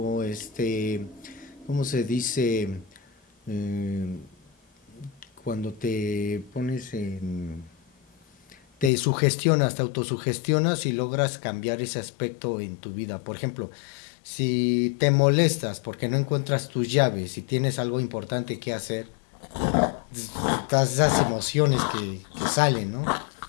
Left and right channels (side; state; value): right; drops out; at 8.9 s